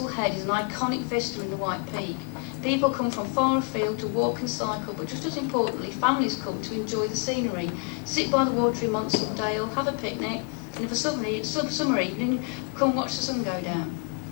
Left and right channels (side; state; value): right; quieter; 33.6 dB